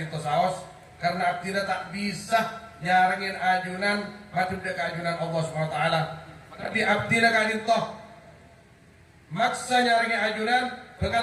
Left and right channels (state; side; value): identical; both; correlation 1.00